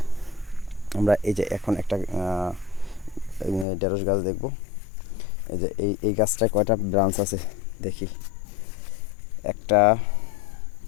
আমরা এই যে এখন একটা ঢেঁড়স গাছ দেখব। এই যে এই গাছটায় কয়টা ব্রাঞ্চ আছে দেখি। 1টা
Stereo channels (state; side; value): drops out; right; at 3.7 s